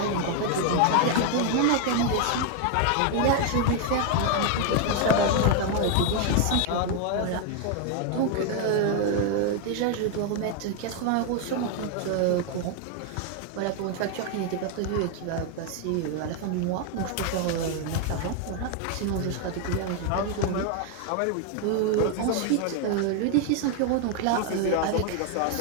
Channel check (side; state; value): both; different; correlation 0.01